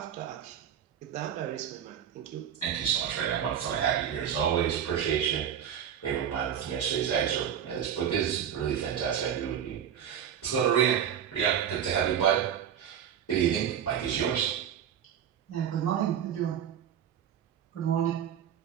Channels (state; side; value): quieter; left; 9.1 dB